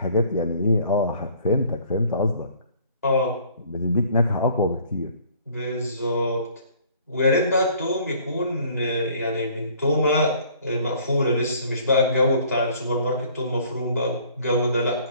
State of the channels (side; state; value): both; inverted; correlation -0.56